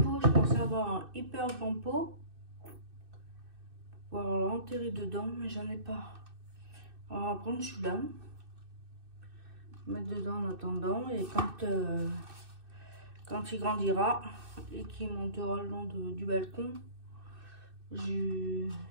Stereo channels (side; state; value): left; late; 2.6 ms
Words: je pensais avoir un hyper grand pot pour l'enterrer dedans, mais j'en ai pas. Alors on va prendre celui-là, mettre dedans en attendant, et quand il grandira et qu'il montera le long du balcon, je